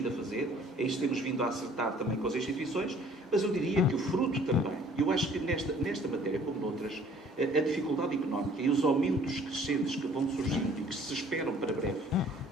a fazer, é isso que temos vindo a acertar também com as instituições, mas eu diria que o fruto também, eu acho que nesta matéria, como noutras, a dificuldade económica e os aumentos crescentes que vão surgindo e que se esperam para breve,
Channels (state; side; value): normal; both; correlation 0.55